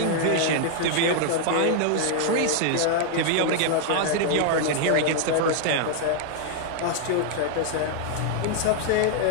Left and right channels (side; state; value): both; different; correlation 0.00